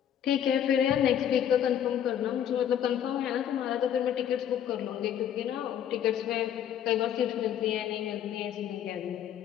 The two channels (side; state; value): right; quieter; 9.8 dB